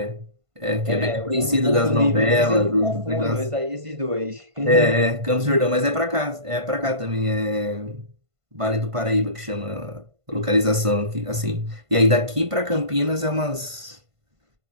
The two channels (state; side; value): late; left; 1.5 ms